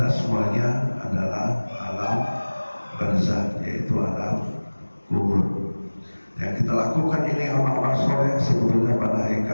semuanya adalah alam barzakh, yaitu alam kubur. Yang kita lakukan ini amal-amal soleh sebetulnya pada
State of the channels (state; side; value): inverted; both; correlation -1.00